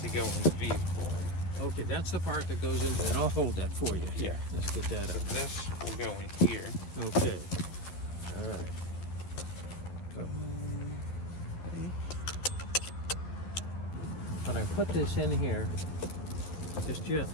go in the vehicle. Okay, that's the part that goes into it. I'll hold that for you. Yeah. Let's get that So up. this will go in here. Okay. All right. So, when I put this in here, just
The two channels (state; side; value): late; right; 11 ms